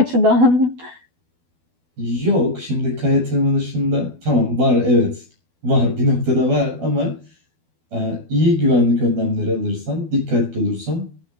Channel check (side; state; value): left; late; 12 ms